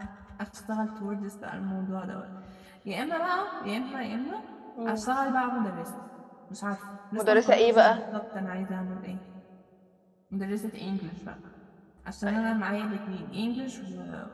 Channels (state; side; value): identical; both; correlation 1.00